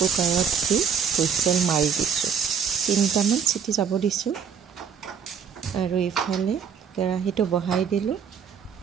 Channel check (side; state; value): left; quieter; 7.1 dB